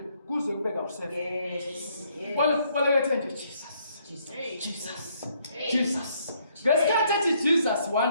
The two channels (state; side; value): inverted; both; correlation -0.69